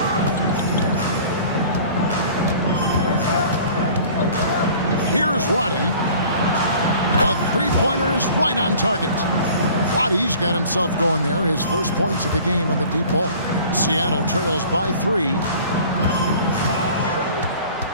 Here's Roddy. Three-pointer is right on target. Wattie's got himself going there. His first points of the game on the deep ball. Seattle trails by 3.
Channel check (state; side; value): inverted; both; correlation -0.47